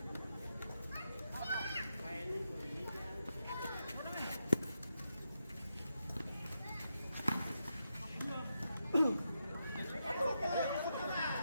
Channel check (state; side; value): inverted; both; correlation -0.86